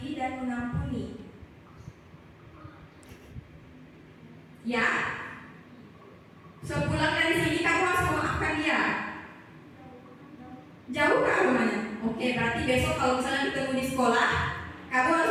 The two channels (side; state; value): both; identical; correlation 1.00